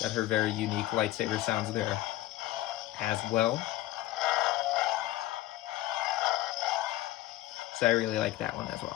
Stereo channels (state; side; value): quieter; right; 15.9 dB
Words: Got her very unique lightsaber sounds there as well. So I really like that one as